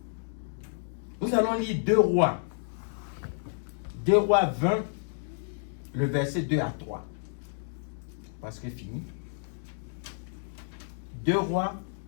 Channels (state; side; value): silent; right; digital silence